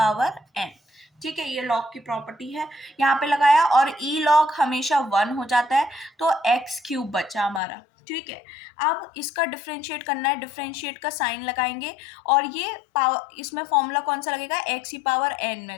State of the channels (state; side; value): drops out; right; at 7.6 s